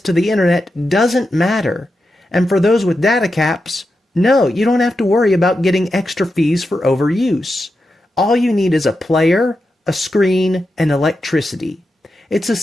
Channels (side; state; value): both; normal; correlation 0.89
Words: to the internet doesn't matter. And for those with data caps, no, you don't have to worry about getting extra fees for overuse. All you need is a player, a screen, and electricity. It's a